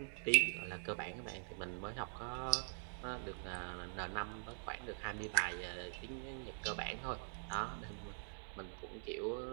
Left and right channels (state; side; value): silent; left; digital silence